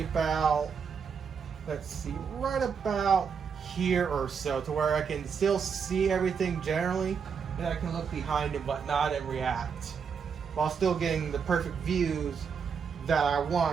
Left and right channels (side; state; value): left; quieter; 6.4 dB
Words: about, let's see, right about here or so, to where I can still see everything generally, and I can look behind and whatnot and react, while still getting the perfect views that I